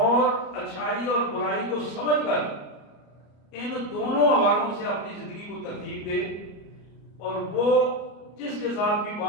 اچھائی اور برائی کو سمجھ کر ان دونوں حوالوں سے اپنی زندگی کو ترتیب دے، اور وہ جس کے ساتھ بھی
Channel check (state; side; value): late; right; 34 ms